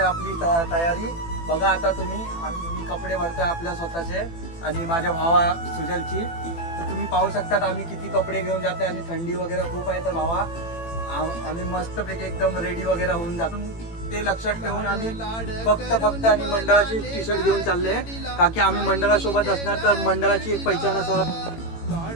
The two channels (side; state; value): right; late; 18 ms